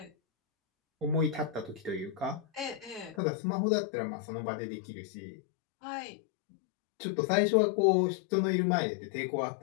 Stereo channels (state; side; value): drops out; right; at 3.2 s